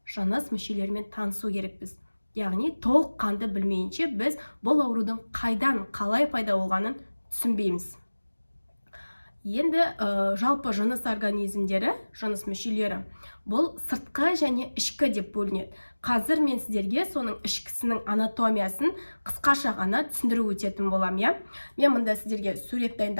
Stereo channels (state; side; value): inverted; both; correlation -1.00